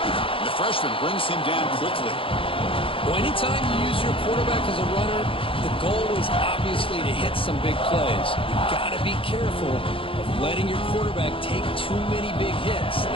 The freshman brings him down quickly. Well, anytime you use your quarterback as a runner, the goal is obviously to hit some big plays. You've got to be careful of letting your quarterback take too many big hits.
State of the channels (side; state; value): right; late; 0.26 ms